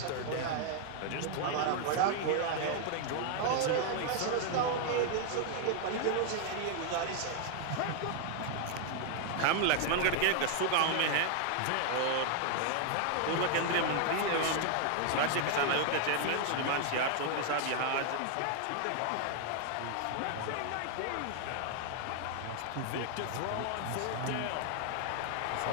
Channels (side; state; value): both; different; correlation 0.00